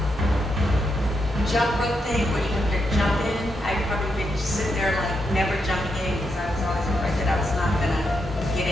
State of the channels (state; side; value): normal; both; correlation 0.82